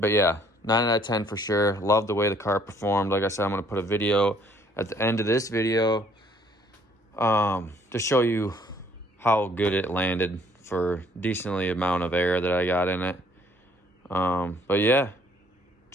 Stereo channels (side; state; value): both; normal; correlation 0.62